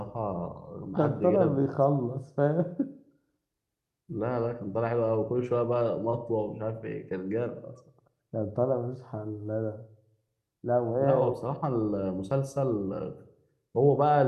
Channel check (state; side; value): identical; both; correlation 1.00